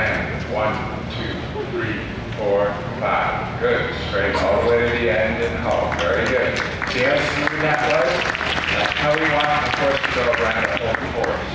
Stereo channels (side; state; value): both; identical; correlation 1.00